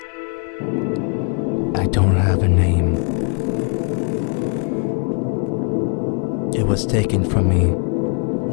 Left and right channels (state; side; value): quieter; right; 36.8 dB